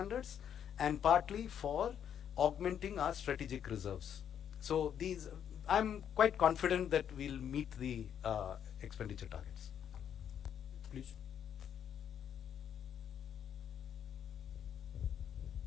and partly for augmenting our strategic reserves. So I'm quite confident that we'll meet the expenditure targets. Please.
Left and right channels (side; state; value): right; quieter; 9.0 dB